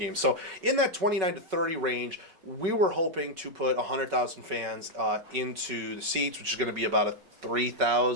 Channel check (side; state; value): left; late; 5.3 ms